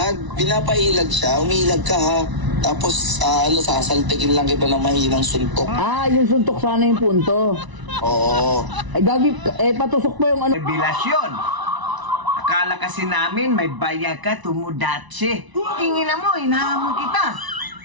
Pinapailag siya. Umiilag ka ha. Tapos, sasaltikin lang kita ng mahinang suntok. Ah, yung suntok sana yung punto. Oo. Ay, gagi, patusok pa yung ano. Revelasyon. Akala kasi namin may bayag ka, Tomodachi. Kingina mo, hinahamon kita.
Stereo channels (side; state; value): left; late; 1.0 ms